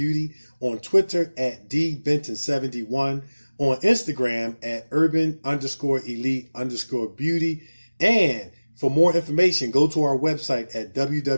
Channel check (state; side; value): inverted; both; correlation -1.00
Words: on Twitter at dbenton71, on Instagram at urban_elite_beauty, and for more information, go to our website at